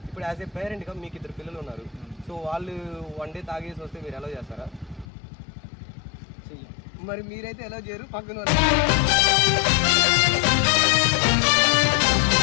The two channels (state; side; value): drops out; right; at 5.1 s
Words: ఇప్పుడు యాజ్ ఏ పేరెంట్గా మీకు 2 పిల్లలు ఉన్నారు, సో వాళ్ళు వన్ డే తాగేసి వస్తే మీరు ఎలా చేస్తారా? మరి మీరైతే ఎలా చేయరు, పక్కన